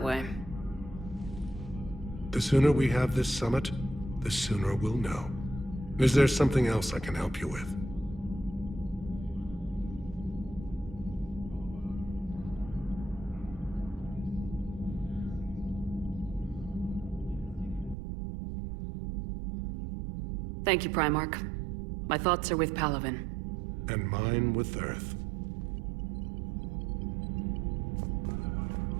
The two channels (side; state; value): left; drops out; at 17.9 s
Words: way... The sooner we have this summit, the sooner we'll know. Is there something else I can help you with? Thank you, Primarch. My thoughts are with Palaven. And mine with Earth.